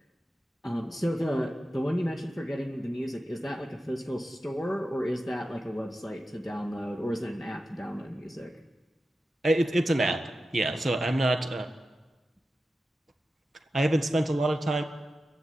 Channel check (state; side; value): normal; both; correlation 0.92